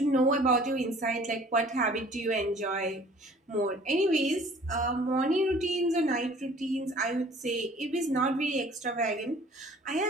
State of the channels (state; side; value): normal; both; correlation 0.52